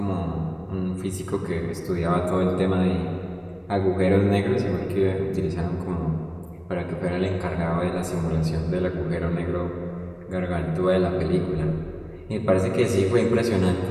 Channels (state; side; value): identical; both; correlation 1.00